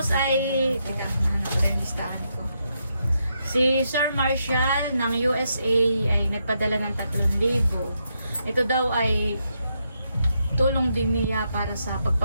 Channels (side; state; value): both; inverted; correlation -0.81